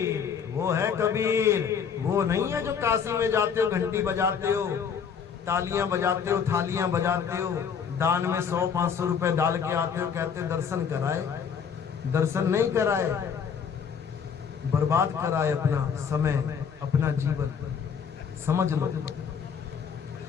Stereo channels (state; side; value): quieter; right; 6.9 dB